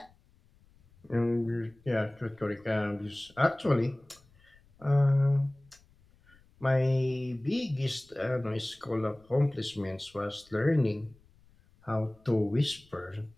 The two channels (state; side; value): noise; left; rumble, 30 dB below the sound